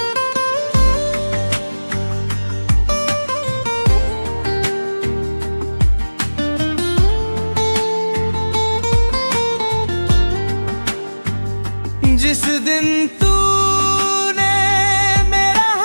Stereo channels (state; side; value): inverted; both; correlation -1.00